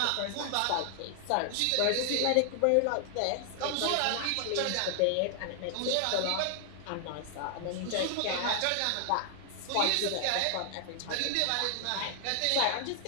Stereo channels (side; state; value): both; different; correlation 0.00